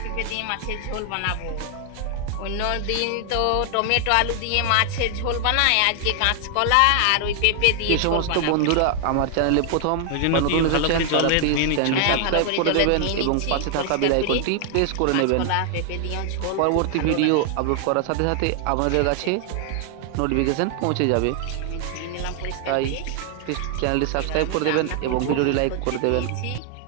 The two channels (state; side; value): different; both; correlation 0.00